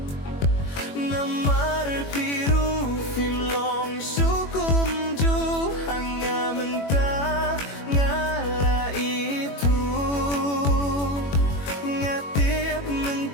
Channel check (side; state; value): right; late; 21 ms